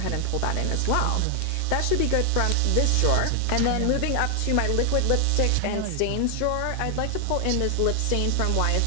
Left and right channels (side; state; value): both; different; correlation 0.00